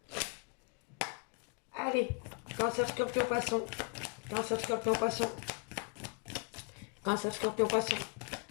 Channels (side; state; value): right; quieter; 37.1 dB